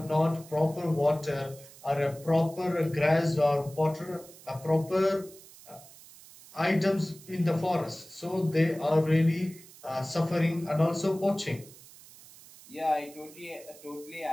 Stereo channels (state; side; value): noise; right; hiss, 21 dB below the sound